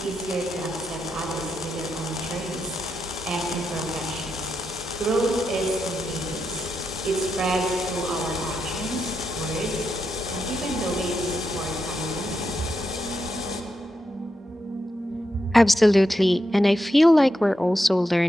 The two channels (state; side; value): normal; both; correlation 0.85